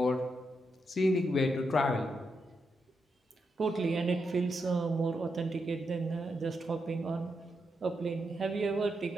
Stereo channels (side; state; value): both; normal; correlation 0.83